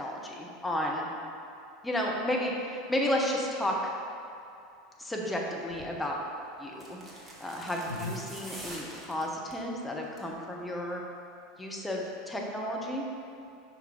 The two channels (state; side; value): normal; both; correlation 0.49